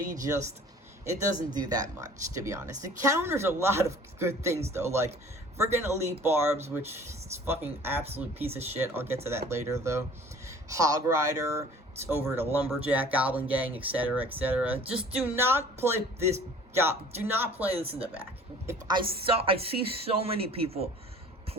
just, it doesn't do that much, to be honest. It counters a lot of good things, though, like friggin' Elite Barbs, which is fucking absolute piece of shit. I'll get to that later, though. Hog Rider, it's over to Lumberjack, Goblin Gang, etc., etc. Just do not play this. Do not play this in the back. If I see so many people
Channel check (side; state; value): both; normal; correlation 0.49